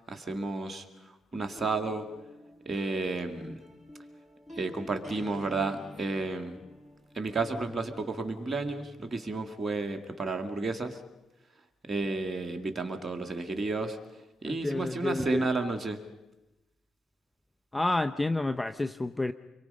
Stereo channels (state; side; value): normal; both; correlation 0.83